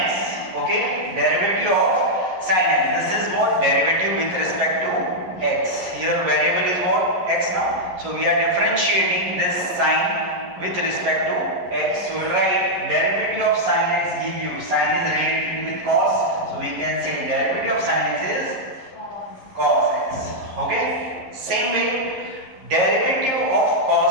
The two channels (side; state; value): left; late; 11 ms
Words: Okay, derivative of sine x. This is what, derivative with respect to x. Here variable is what, x now. So we are differentiating this sine with respect to x. So we will write derivative of sine x give you, sine is related with cos, so we can say derivative of sine x is cos x. Okay, same way, derivative of